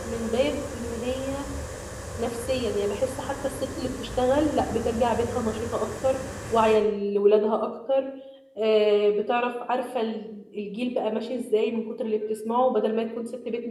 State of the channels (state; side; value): identical; both; correlation 1.00